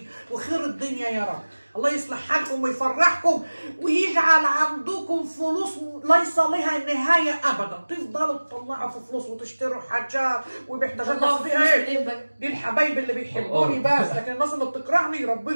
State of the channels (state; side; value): inverted; both; correlation -1.00